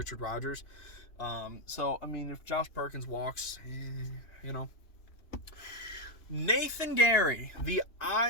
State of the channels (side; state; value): right; late; 2.9 ms